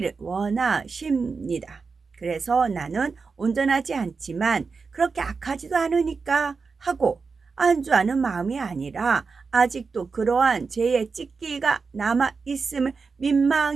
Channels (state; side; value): quieter; left; 4.8 dB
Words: 원하십니다. 그래서 나는 온전하지 않지만 그렇게 악하지도 않으니까 하고 안주하는 마음이 아니라 아직도 그러한 죄의 찢기가 남아있음을